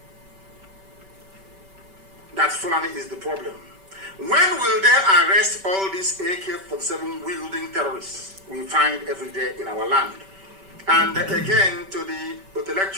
that Fulani is the problem, when will they arrest all these AK-47 wielding terrorists we find every day in our land? And again, to the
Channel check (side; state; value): left; late; 5.2 ms